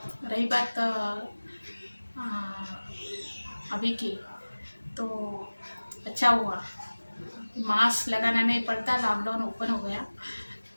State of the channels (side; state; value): both; inverted; correlation -1.00